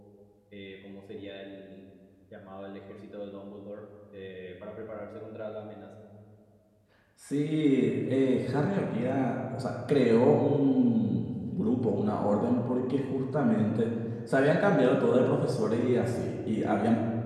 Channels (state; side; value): identical; both; correlation 1.00